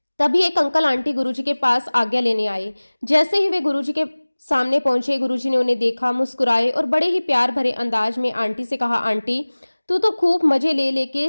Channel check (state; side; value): inverted; both; correlation -1.00